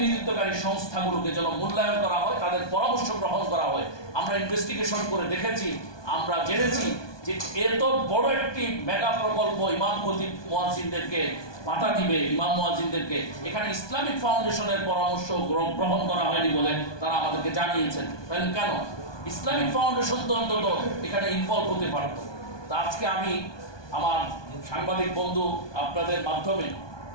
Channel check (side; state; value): right; late; 1.2 ms